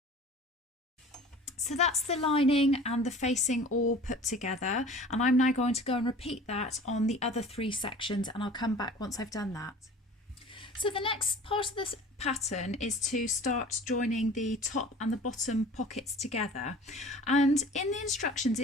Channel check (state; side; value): normal; both; correlation 0.43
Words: So that's the lining and the facing all put together, and I'm now going to go and repeat that on the other 3 sections, and I'll come back once I've done that. So the next part of this pattern is to start joining the top and the bottom pockets together, and in the instructions